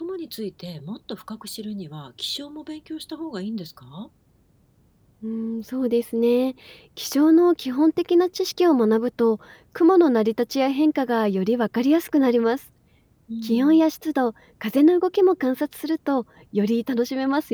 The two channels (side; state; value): both; identical; correlation 1.00